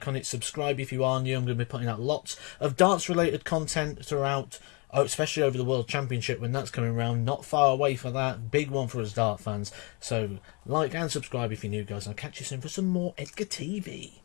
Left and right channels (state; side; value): quieter; right; 30.3 dB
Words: on it, subscribe if you are new. I'm going to be putting out lots of darts related content throughout, especially over the World Championship when that's coming around. Not far away for that. Big one for us dart fans. So like and subscribe if you're new, guys. I'll catch you soon for some more Edgar TV.